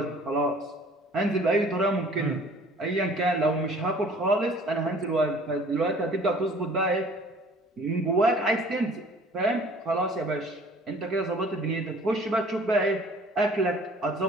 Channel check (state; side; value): normal; both; correlation 0.51